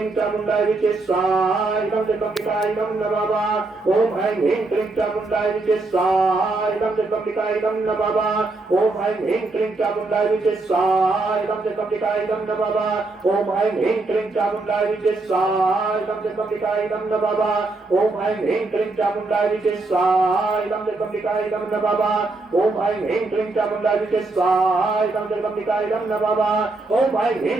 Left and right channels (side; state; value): left; quieter; 3.3 dB